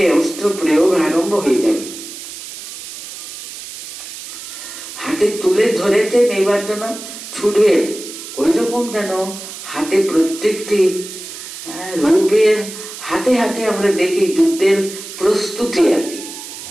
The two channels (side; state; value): right; noise; hiss, 11 dB below the sound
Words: অস্ত্র প্রয়োগ আরম্ভ হয়ে যাবে। হাতে তুলে ধরেছেন, এবার যেন ছুটবে, ওই রকম যেন হাতে প্রত্যেকটি রূপের হাতে হাতে আমরা দেখি যুদ্ধের প্রস্তুতি আর কি।